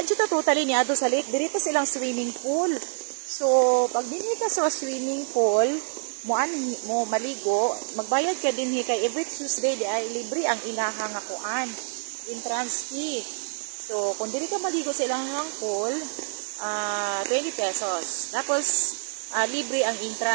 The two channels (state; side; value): silent; left; digital silence